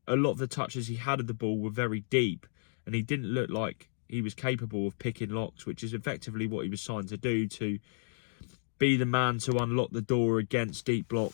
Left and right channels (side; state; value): right; silent; digital silence